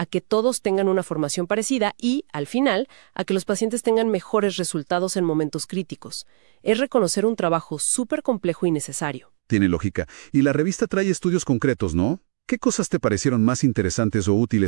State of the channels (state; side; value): silent; left; 59 dB below the other